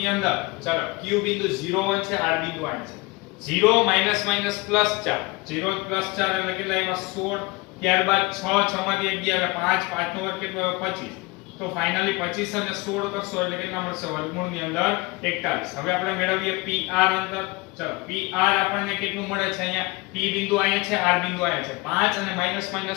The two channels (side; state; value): right; quieter; 24.3 dB